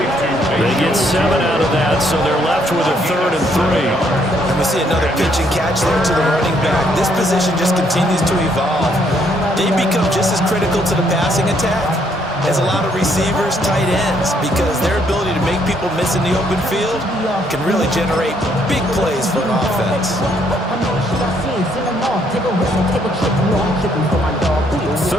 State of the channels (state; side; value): normal; both; correlation 0.69